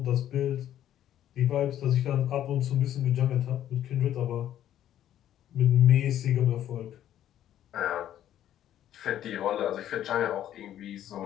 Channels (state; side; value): quieter; right; 11.5 dB